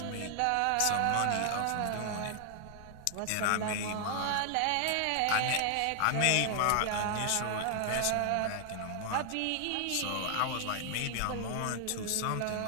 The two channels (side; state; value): both; different; correlation 0.00